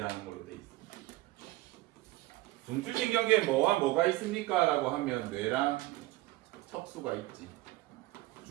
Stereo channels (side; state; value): left; quieter; 19.0 dB